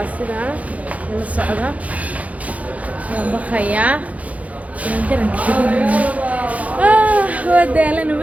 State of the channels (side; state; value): left; late; 0.068 ms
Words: sidaa ila socda waan baqayaa waa daalana